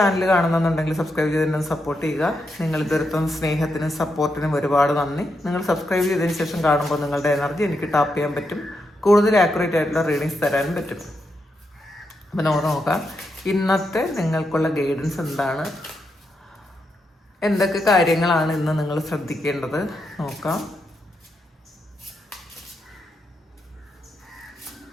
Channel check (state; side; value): normal; both; correlation 0.83